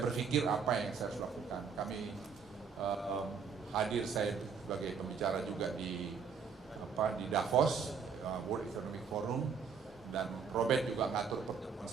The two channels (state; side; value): quieter; left; 6.1 dB